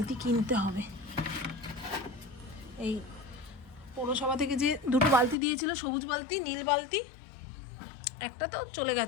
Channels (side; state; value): right; drops out; at 5.4 s